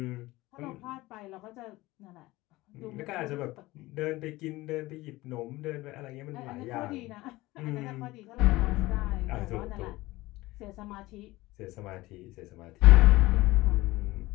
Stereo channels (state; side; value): quieter; right; 19.3 dB